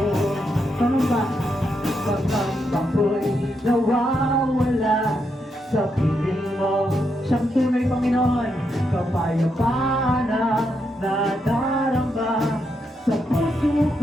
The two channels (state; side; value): normal; both; correlation 0.81